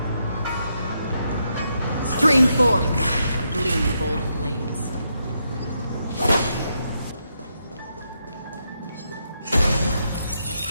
Stream forth the gleam of old blades.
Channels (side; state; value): both; inverted; correlation -0.81